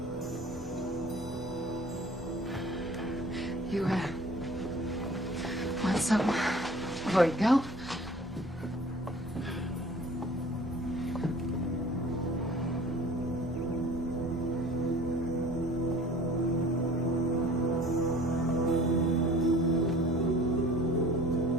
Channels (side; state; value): both; normal; correlation 0.47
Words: You, want something before you go?